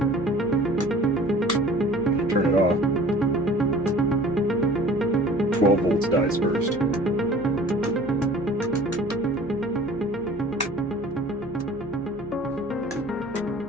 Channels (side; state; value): right; noise; hum, 22 dB below the sound